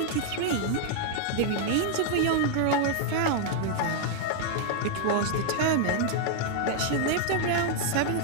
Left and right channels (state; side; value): different; both; correlation 0.00